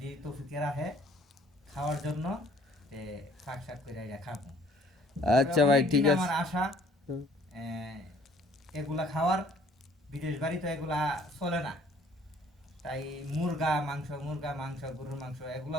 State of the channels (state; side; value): normal; both; correlation 0.58